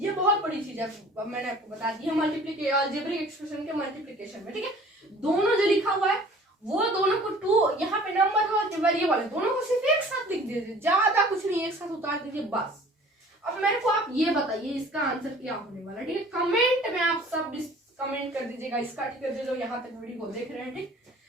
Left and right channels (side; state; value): both; normal; correlation 0.49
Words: बहुत बड़ी चीज है, मैंने आपको बता दी है मल्टीप्लिकेशन, अलजेब्रिक एक्सप्रेशन के मल्टीप्लिकेशन में। ठीक है, दोनों जो लिखा हुआ है वो दोनों को 2 यहाँ पे नंबर है और वेरिएबल है, दोनों को सिर्फ एक साथ लिख दीजिए, ज्यादा कुछ नहीं, एक साथ उतार दीजिए बस। अब मेरे को आप ये बताइए इसका आंसर क्या होने वाला है। ठीक है, कमेंट में आप सब कमेंट कर दीजिएगा इसका। ठीक है, जो यहाँ तक वीडियो को देख रहे हैं, ठीक,